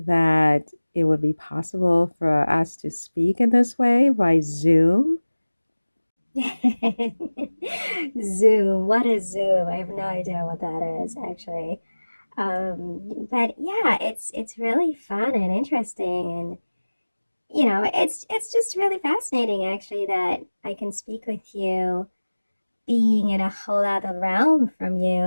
that it would be possible for us to speak in this way by Zoom? Zoom, what is Zoom? I have no idea what that is actually. But yeah, it's really fun and interesting, and it's just really fascinating actually that I can speak with you, being in a whole other realm from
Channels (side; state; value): both; inverted; correlation -1.00